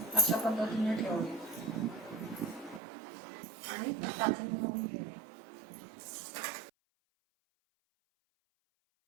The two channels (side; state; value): left; drops out; at 2.8 s